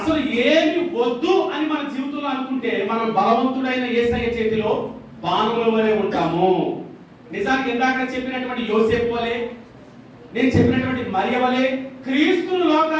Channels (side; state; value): both; identical; correlation 1.00